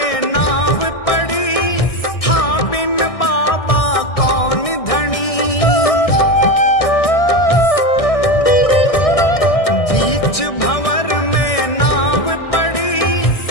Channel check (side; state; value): right; late; 1.6 ms